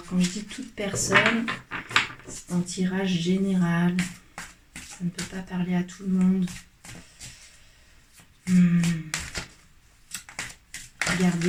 quand je dis toute personne, c'est un tirage général. Ça ne peut pas parler à tout le monde.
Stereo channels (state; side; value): identical; both; correlation 1.00